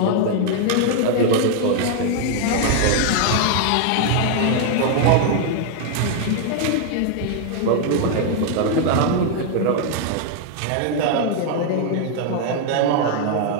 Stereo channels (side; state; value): both; different; correlation 0.00